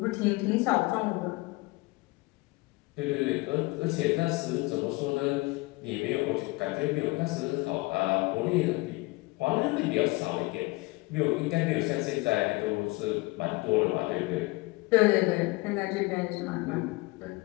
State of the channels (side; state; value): right; quieter; 23.5 dB